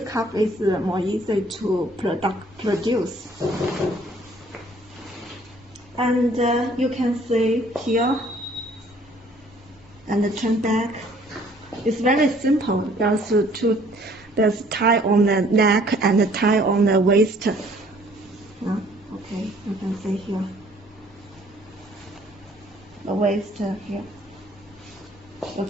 cuff is more easy to produce. And you can see here, and turn back. It's very simple. There's tie on the neck and a tie on the waist. Okay, you can see here. The waist here. The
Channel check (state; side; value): normal; both; correlation 0.58